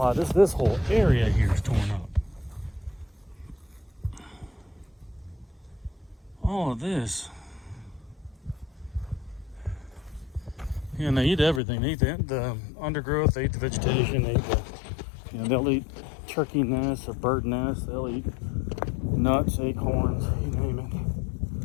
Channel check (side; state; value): right; drops out; at 11.6 s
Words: This whole area here is torn up. All of this. Yeah, and they eat everything. They eat the undergrowth, they eat the vegetation, they eat they'll eat turkey nests or bird nests, they'll eat nuts, acorns, you name it.